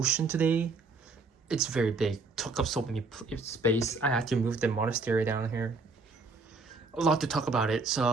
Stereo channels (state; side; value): quieter; left; 3.8 dB